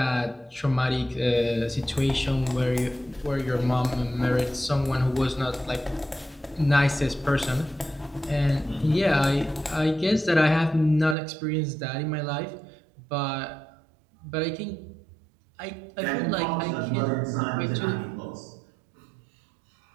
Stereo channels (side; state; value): left; drops out; at 11.2 s